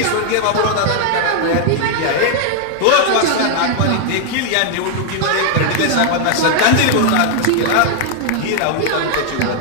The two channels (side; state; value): both; different; correlation 0.00